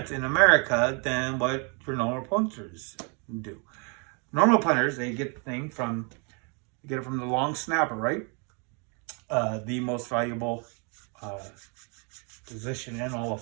in America than what your normal punters do. Normal punters, they get the thing from the long snapper, right? The most valuable position in all of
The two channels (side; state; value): left; quieter; 34.7 dB